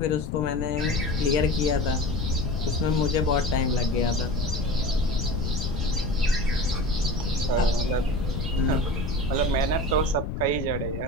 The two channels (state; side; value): noise; left; rumble, 4 dB below the sound